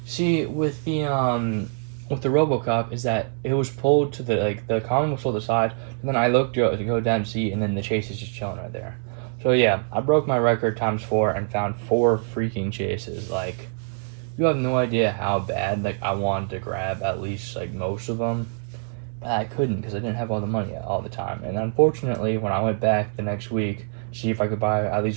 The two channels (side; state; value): left; silent; 57 dB below the other